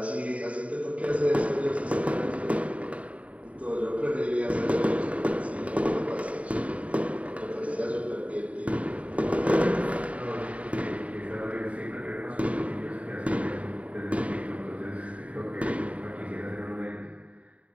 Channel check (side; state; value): left; late; 0.066 ms